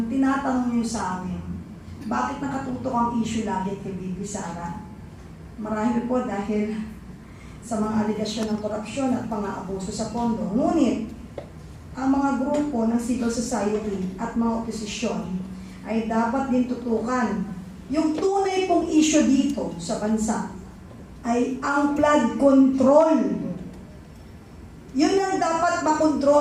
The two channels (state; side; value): identical; both; correlation 1.00